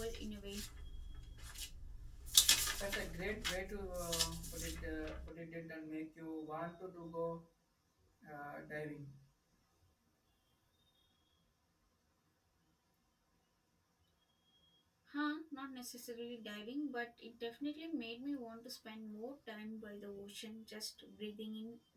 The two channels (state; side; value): identical; both; correlation 1.00